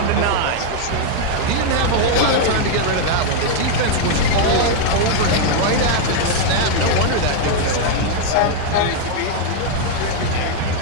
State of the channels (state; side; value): different; both; correlation 0.00